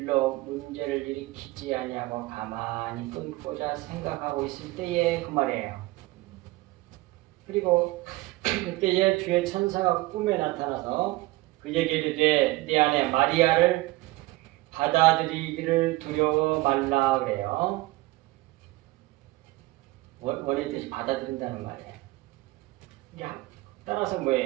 문제를 일으키지 아니하고 가만히 끊고자 생각하고 있을 때의 그 말이에요. 그리고 그때에 주의 천사가 꿈에 나타나서 그에게 이르되 네 아내 마리아를 받아들이기를 두려워 말라 그래요. 원의 뜻이 받아들인다는 말이에요. 따라서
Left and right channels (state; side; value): quieter; left; 19.7 dB